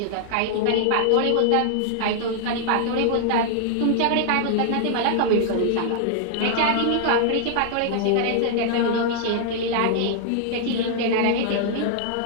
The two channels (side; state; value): both; different; correlation -0.01